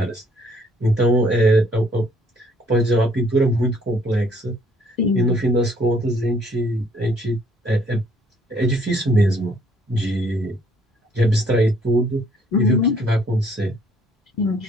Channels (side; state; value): both; normal; correlation 0.63